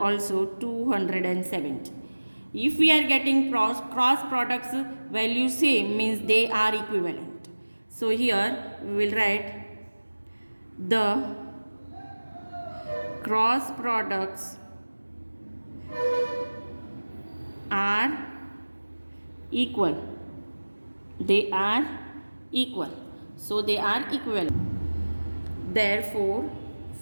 also 270. If we are getting cross products value same, means they are equivalent. So here we will write the cross products are equal. They are equal. So they are equivalent. Therefore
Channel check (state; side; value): inverted; both; correlation -1.00